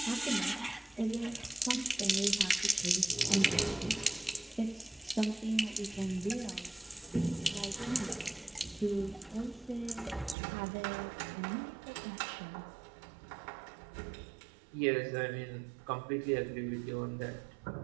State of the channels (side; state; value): left; drops out; at 10.4 s